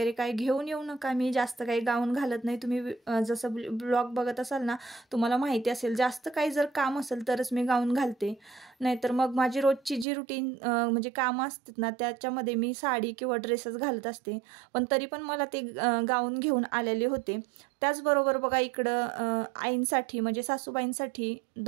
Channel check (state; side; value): drops out; left; at 10.1 s